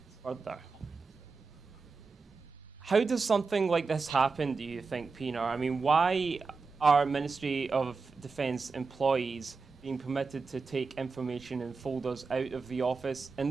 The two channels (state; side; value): quieter; left; 4.5 dB